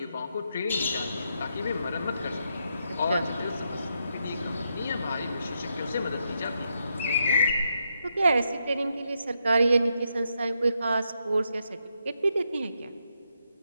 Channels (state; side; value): inverted; both; correlation -0.81